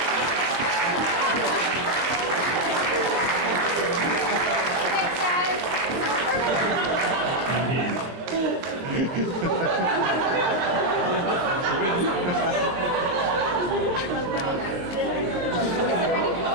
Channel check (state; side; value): late; left; 22 ms